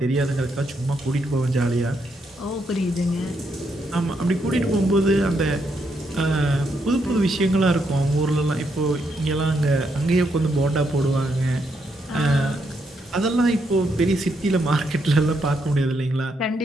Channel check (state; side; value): normal; both; correlation 0.78